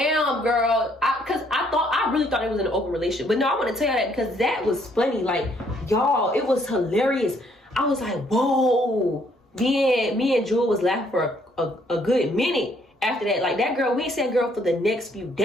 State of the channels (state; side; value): normal; both; correlation 0.67